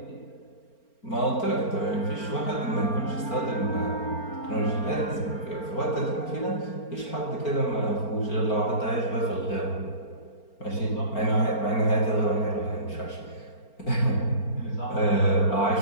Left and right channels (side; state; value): right; late; 4.4 ms